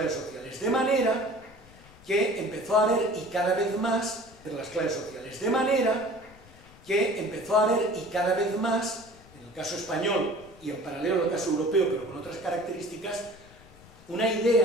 sociales. De manera que empezó a haber, y cada vez más, entre las clases sociales, de manera que empezó a haber, y cada vez más, en el caso español y en paralelo al caso europeo, pero con otras características, una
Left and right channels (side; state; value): left; noise; rumble, 23 dB below the sound